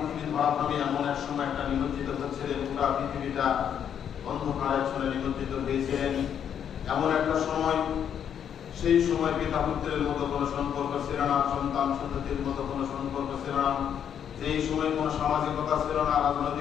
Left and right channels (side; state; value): right; quieter; 8.7 dB